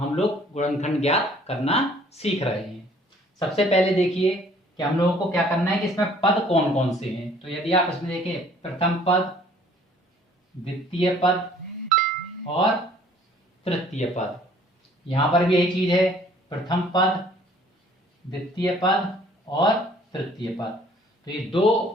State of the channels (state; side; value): normal; both; correlation 0.56